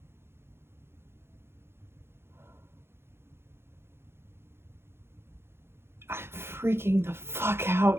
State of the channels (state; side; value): late; left; 0.12 ms